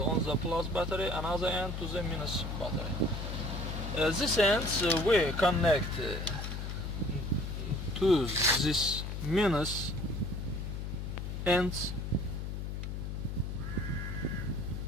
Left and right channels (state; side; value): noise; left; hum, 4 dB below the sound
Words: plus battery and other end to the minus battery. This ends we connect to this minus ends